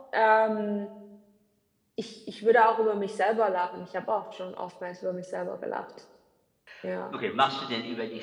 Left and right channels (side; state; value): both; identical; correlation 1.00